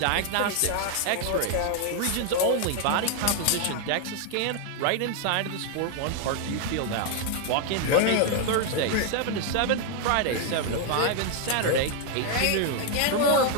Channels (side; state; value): both; different; correlation 0.00